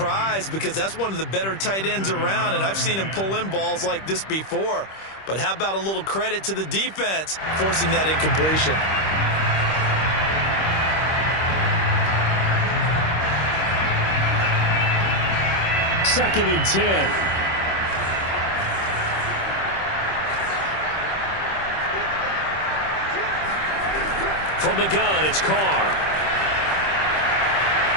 because that's one of the better tight ends around, and I've seen him pull in balls like this before. But how about a little credit to the defense forcing that incompletion? Second and 10. From the gun, it's Carr.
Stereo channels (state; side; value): late; right; 26 ms